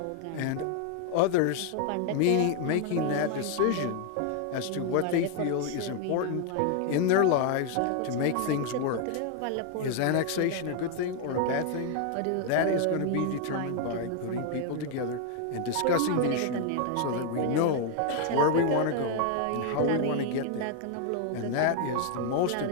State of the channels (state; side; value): different; both; correlation 0.00